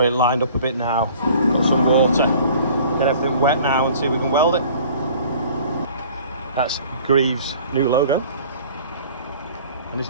it lined up a bit now. Got some water. Get everything wet now and see if we can weld it. That's Greaves' new logo and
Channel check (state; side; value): inverted; both; correlation -0.49